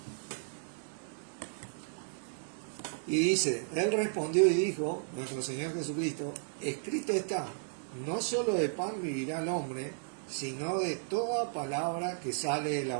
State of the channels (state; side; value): silent; left; 55 dB below the other